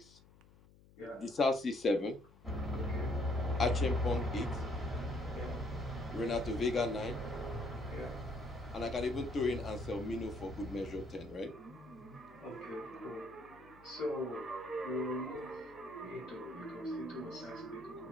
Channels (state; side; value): noise; left; hum, 25 dB below the sound